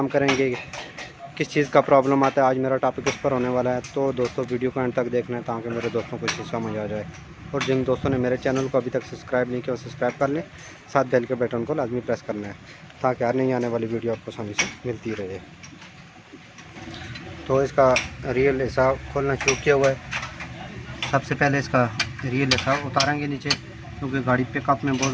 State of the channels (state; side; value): identical; both; correlation 1.00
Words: करेंगे, किस चीज़ का प्रॉब्लम आता है, आज मेरा टॉपिक इस पर होने वाला है। तो दोस्तों वीडियो को एंड तक देखना है ताकि मेरे दोस्तों को चीज़ समझ आ जाए। और जिन दोस्तों ने मेरे चैनल को अभी तक सब्सक्राइब नहीं किया वो सब्सक्राइब कर लें, साथ बेल के बटन को लाजमी प्रेस करना है ताकि हर नई आने वाली वीडियो आपको आसानी से मिलती रहे। तो इसका रियल हिस्सा खोलना शुरू किया हुआ है। सबसे पहले इसका रियल हिस्सा उतारेंगे नीचे, क्योंकि गाड़ी पिकअप में बहुत